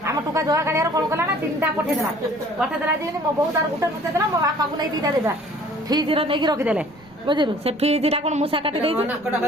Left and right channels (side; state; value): right; noise; rumble, 28 dB below the sound